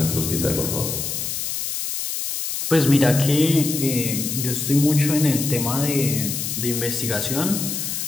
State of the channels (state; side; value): noise; left; hiss, 3 dB below the sound